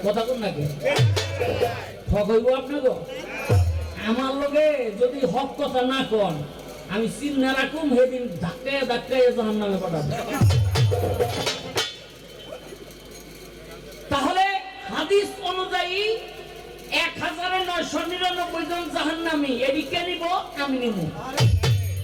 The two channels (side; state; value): both; identical; correlation 1.00